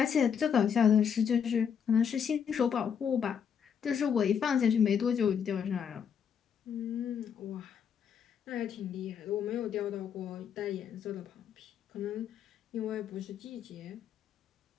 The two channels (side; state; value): right; quieter; 7.6 dB